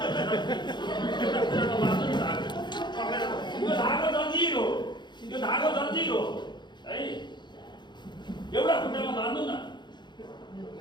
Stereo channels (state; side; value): late; right; 0.22 ms